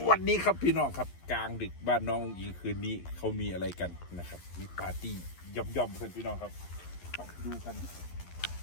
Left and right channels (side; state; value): right; late; 11 ms